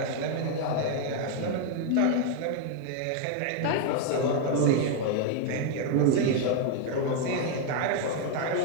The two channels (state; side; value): different; both; correlation 0.00